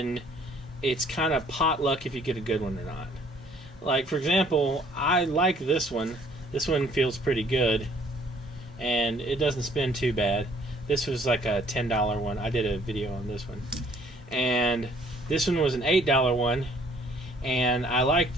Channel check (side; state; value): both; normal; correlation 0.60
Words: it's kind of potluck if you get a good one or not. Like, for example, I like this one. This one feels pretty good, and it doesn't spin too bad. This was like a $10 one. I did a video on this one. And this one was an $8 one, and I